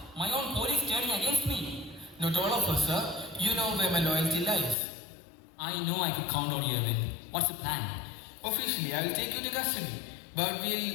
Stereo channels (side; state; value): right; drops out; at 4.8 s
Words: My own police turning against me? Not all of us, sir. You know where my loyalty lies. I know I could count on you, Arvind. What's the plan? Officially, I will take you to custody. But